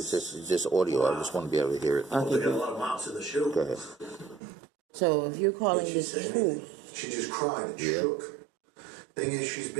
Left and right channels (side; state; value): left; drops out; at 4.4 s